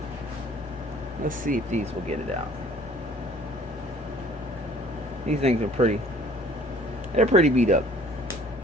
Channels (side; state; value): both; normal; correlation 0.54